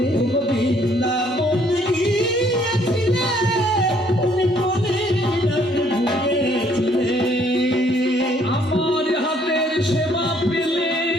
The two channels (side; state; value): both; normal; correlation 0.64